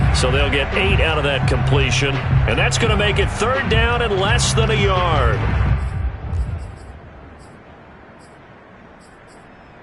So they'll get 8 out of that completion. And that's going to make it 3rd down and less than a yard.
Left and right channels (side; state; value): both; identical; correlation 1.00